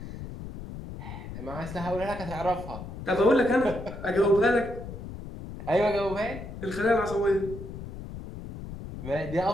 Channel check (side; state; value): left; noise; rumble, 10 dB below the sound